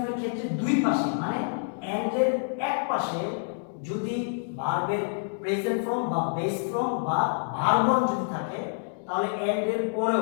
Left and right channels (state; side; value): silent; right; digital silence